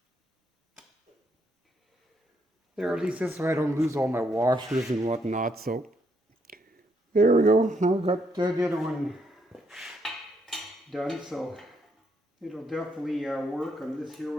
There, at least this way I don't lose all my washers and whatnot, so there we go. I've got the other one done, so it'll definitely work on this here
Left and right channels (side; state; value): both; normal; correlation 0.74